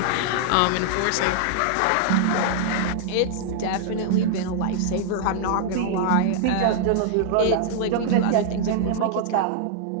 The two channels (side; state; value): both; different; correlation -0.01